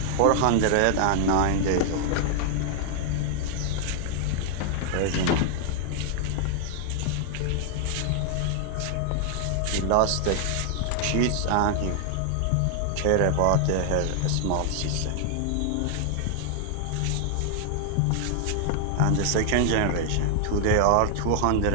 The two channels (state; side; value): different; both; correlation 0.00